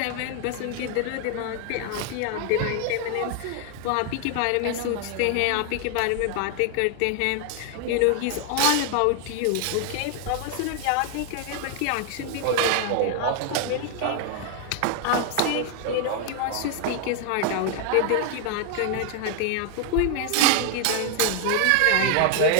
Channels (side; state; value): both; different; correlation 0.00